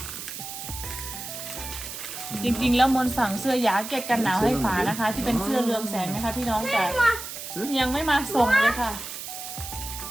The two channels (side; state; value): right; noise; hiss, 9 dB below the sound